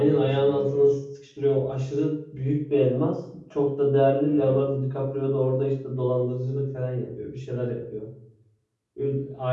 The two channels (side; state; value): both; identical; correlation 1.00